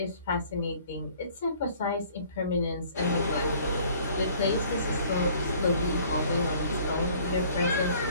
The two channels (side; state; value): both; inverted; correlation -0.55